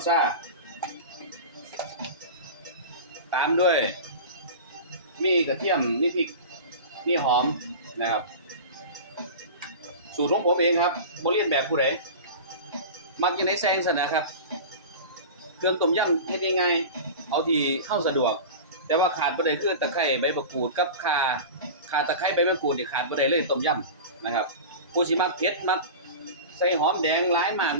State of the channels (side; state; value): both; inverted; correlation -0.31